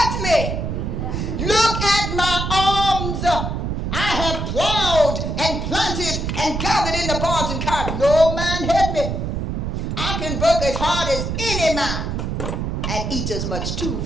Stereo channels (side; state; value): right; noise; rumble, 2 dB below the sound